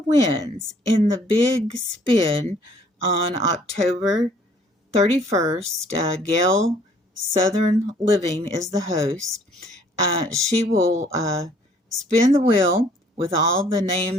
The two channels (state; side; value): normal; both; correlation 0.59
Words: in the big spin on October 31st, Gail Southern Living is the host. She will spin the wheel with all the